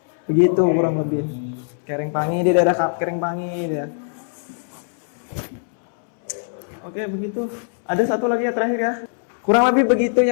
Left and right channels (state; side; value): silent; right; 65 dB below the other